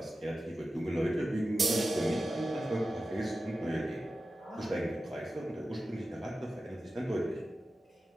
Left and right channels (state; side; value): normal; both; correlation 0.93